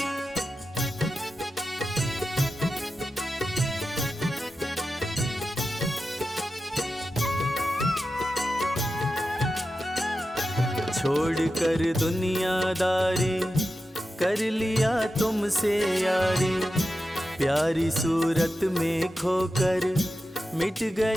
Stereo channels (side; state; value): both; normal; correlation 0.91